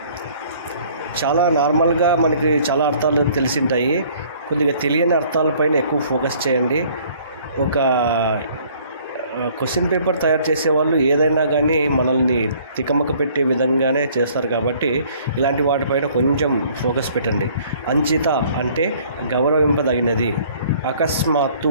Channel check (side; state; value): both; inverted; correlation -0.57